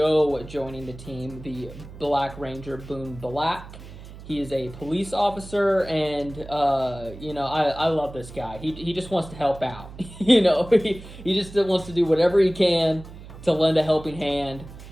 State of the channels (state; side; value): noise; right; hum, 16 dB below the sound